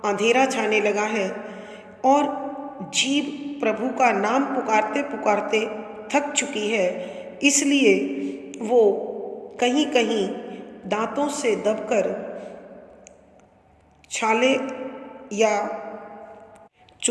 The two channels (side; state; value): both; identical; correlation 1.00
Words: अंधेरा छाने लगा है और जीभ प्रभु का नाम पुकारते पुकारते थक चुकी है। इसलिए वो कहीं कहीं दांतों से दबकर छाले या